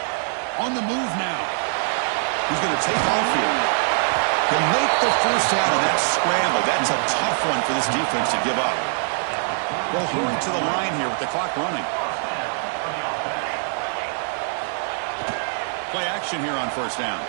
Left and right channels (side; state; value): left; silent; 63 dB below the other